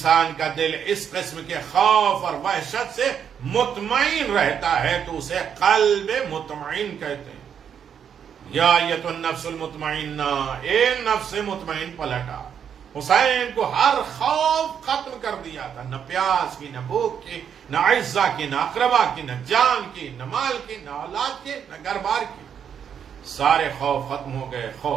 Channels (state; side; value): quieter; left; 8.1 dB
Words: کا دل اس قسم کے خوف اور وحشت سے مطمئن رہتا ہے تو اسے قلب مطمئن کہتے ہیں۔ یا ایتھا النفس المطمئنہ، اے نفس مطمئن پلٹا۔ حسین کو ہر خوف ختم کر دیا تھا، نہ پیاس کی، نہ بھوک کی، نہ عزہ کی، نہ اقربا کی، نہ جان کی، نہ مال کی، نہ اولاد کی، نہ گھر بار کی۔ سارے خوف ختم ہو گئے،